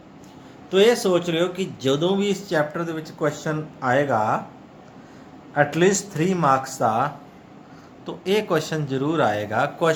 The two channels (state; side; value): identical; both; correlation 1.00